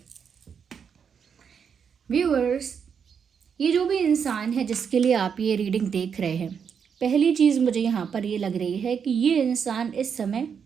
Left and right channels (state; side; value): quieter; left; 6.9 dB